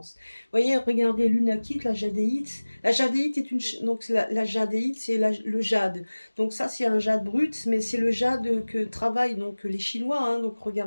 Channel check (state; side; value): inverted; both; correlation -1.00